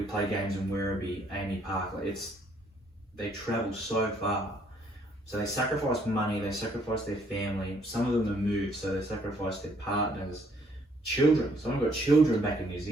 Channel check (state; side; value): normal; both; correlation 0.66